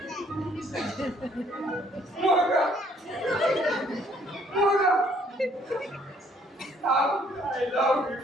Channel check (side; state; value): both; normal; correlation 0.64